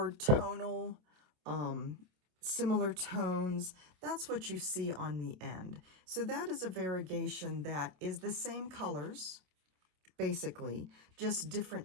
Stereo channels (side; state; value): left; late; 27 ms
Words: tonal, similar tones. That's what you see on the end. So that is a variegation that is the same colors, basically, just